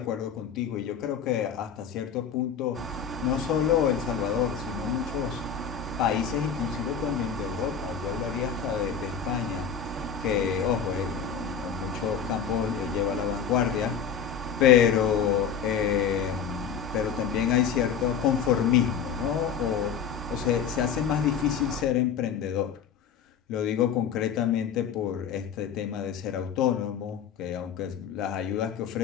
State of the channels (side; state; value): right; quieter; 7.4 dB